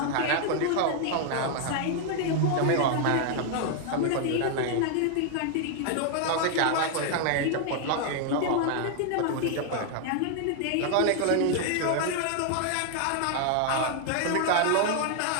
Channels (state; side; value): different; both; correlation 0.00